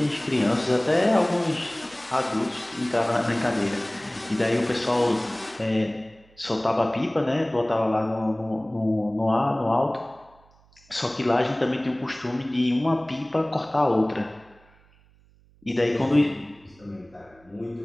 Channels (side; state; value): right; noise; hum, 30 dB below the sound